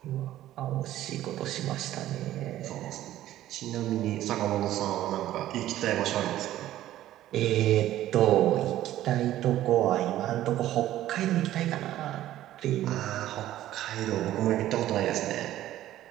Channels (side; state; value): left; quieter; 13.7 dB